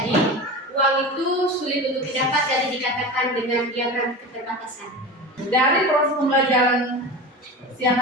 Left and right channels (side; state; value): both; normal; correlation 0.30